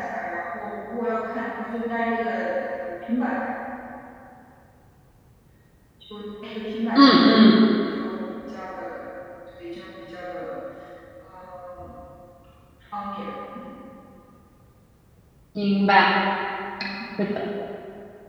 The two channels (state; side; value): identical; both; correlation 1.00